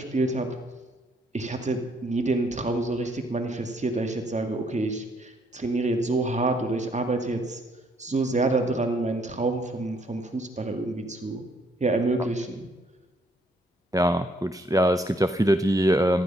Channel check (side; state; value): both; normal; correlation 0.69